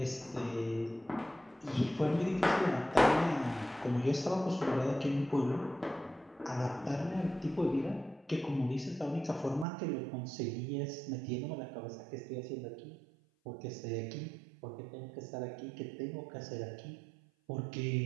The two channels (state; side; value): drops out; left; at 9.7 s